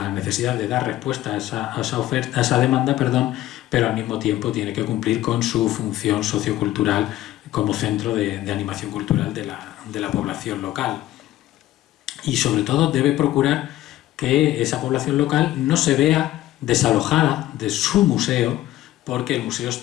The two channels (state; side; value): quieter; right; 14.6 dB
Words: necesidad de dar respuesta a esa demanda, pero al mismo tiempo tiene que cumplir con su función sociocultural como centro de animación cultural de la población local. Y sobre todo debe procurar que esa población local no se vea desalojada de su museo porque el museo